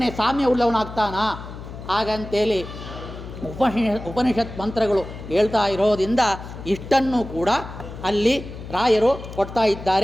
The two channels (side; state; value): left; noise; hum, 12 dB below the sound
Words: ಸಾಮ್ಯ ಉಳ್ಳವನಾಗ್ತಾನ. ಹಾಗಂತೇಳಿ ಉಪನಿಷತ್ ಮಂತ್ರಗಳು ಹೇಳ್ತಾ ಇರೋದ್ರಿಂದ ಇಷ್ಟನ್ನು ಕೂಡ ಅಲ್ಲಿ ರಾಯರು ಕೊಡ್ತಾ